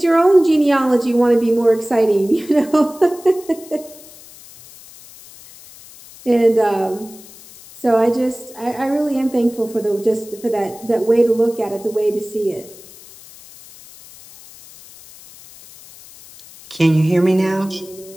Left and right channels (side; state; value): left; noise; hiss, 21 dB below the sound